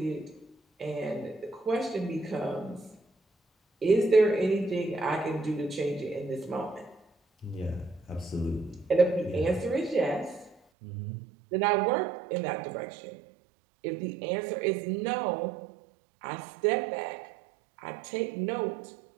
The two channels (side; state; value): left; drops out; at 10.6 s